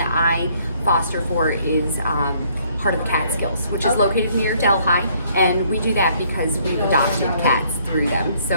I foster for is part of the Catskills, which is Okay. located near Delhi, and we do that because we've adopted cats through them.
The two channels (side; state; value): both; inverted; correlation -0.65